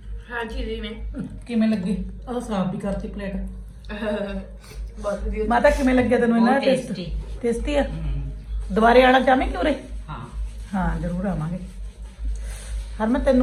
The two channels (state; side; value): identical; both; correlation 1.00